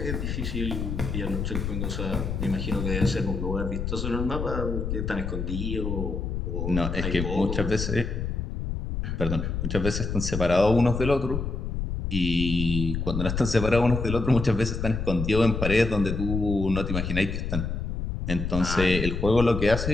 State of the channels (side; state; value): left; noise; rumble, 3 dB below the sound